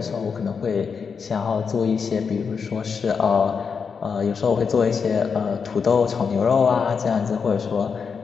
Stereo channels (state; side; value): quieter; right; 5.9 dB